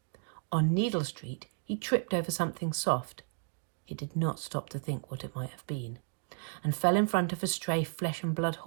On Needle Street he tripped over something soft. He did not stop to think what it might have been, and fell in front of a stray flesh-and-blood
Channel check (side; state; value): left; silent; 56 dB below the other